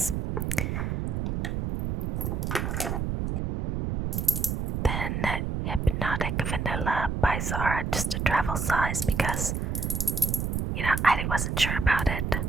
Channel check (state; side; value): noise; right; rumble, 1 dB below the sound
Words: Then Hypnotic Vanilla by Zara, just a travel size because I wasn't sure about it.